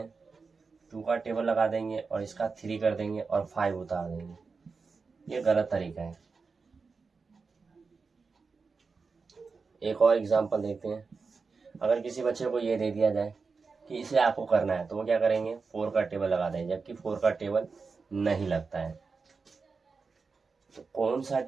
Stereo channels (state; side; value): quieter; left; 4.7 dB